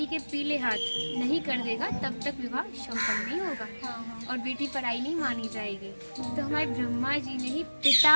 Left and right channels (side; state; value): both; inverted; correlation -1.00